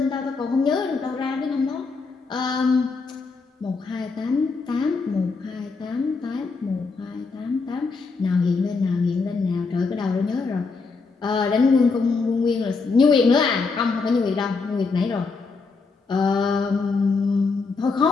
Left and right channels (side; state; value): right; quieter; 4.4 dB